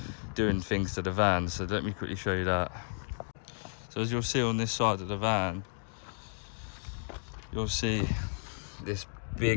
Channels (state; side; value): silent; right; digital silence